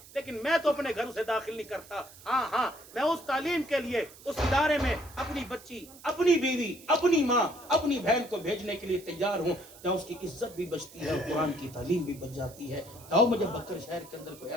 لیکن میں تو اپنے گھر سے داخل نہیں کرتا۔ ہاں میں اس تعلیم کے لیے اس ادارے میں اپنی بچی، اپنی بیوی، اپنی ماں، اپنی بہن کو بھیجنے کے لیے تیار ہوں، جہاں اس کی عزت بھی بچتی ہے اور قرآن کی تعلیم بھی بچ جاتی ہے۔ آؤ مجھے بکر شہر کے اندر کوئی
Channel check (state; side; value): noise; right; hiss, 20 dB below the sound